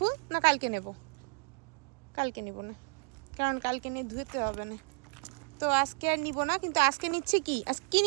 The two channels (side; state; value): left; quieter; 35.4 dB